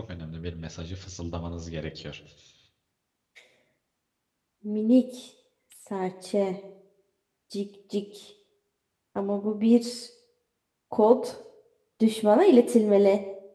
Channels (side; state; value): both; identical; correlation 1.00